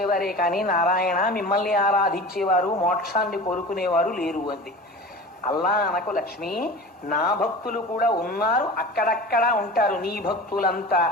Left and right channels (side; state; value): both; normal; correlation 0.35